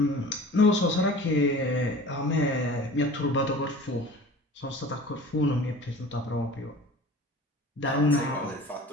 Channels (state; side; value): normal; both; correlation 0.41